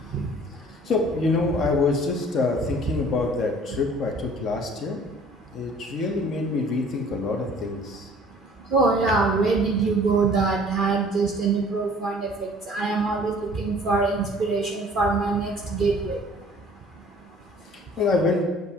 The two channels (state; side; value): normal; both; correlation 0.52